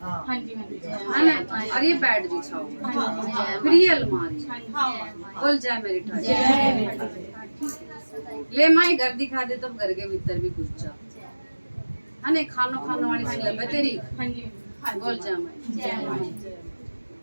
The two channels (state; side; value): inverted; both; correlation -1.00